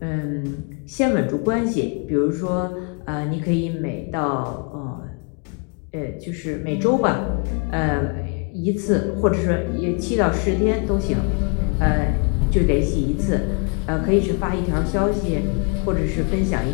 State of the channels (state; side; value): quieter; right; 35.1 dB